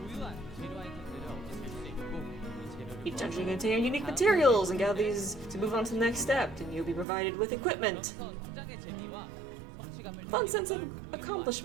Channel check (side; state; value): left; drops out; at 7.1 s